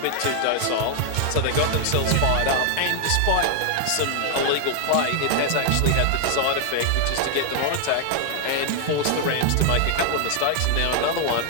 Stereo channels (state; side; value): different; both; correlation 0.00